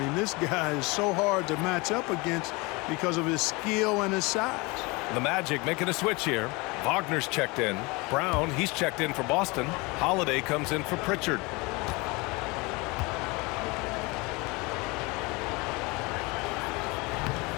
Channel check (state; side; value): quieter; right; 25.8 dB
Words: mean, this guy is so hard to match up against because of his skill and his size. The Magic making a switch here. Wagner's checked in. Brown, he's checked in for Boston. Holiday comes in for Pritchard.